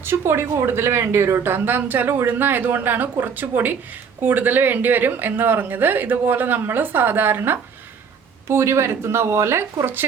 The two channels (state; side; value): quieter; left; 6.4 dB